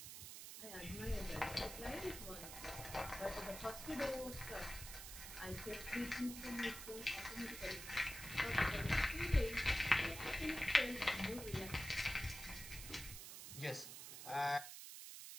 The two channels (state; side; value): noise; right; hiss, 10 dB below the sound